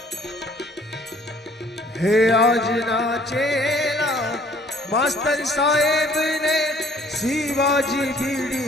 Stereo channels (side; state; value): both; normal; correlation 0.59